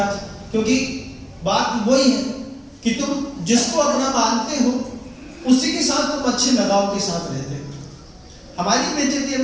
क्योंकि बात वही है कि तुम जिसको अपना मानते हो उसी के साथ तुम अच्छे लगाव के साथ रहते हो। हमारी बेइज्जती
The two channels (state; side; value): identical; both; correlation 1.00